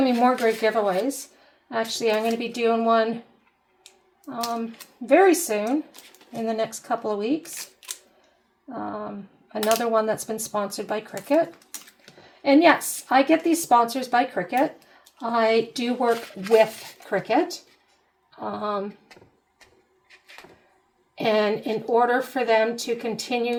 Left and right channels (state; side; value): identical; both; correlation 1.00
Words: to be more great giveaways. Actually, I'm going to be doing one very soon, in the next couple of weeks. Another one that's been sponsored by Cricut. And yes, I get these sponsors by Cricut. I do work with Cricut. And in order for them to